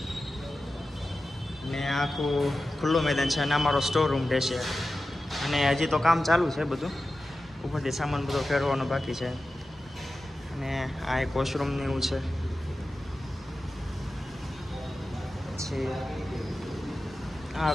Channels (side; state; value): both; normal; correlation 0.93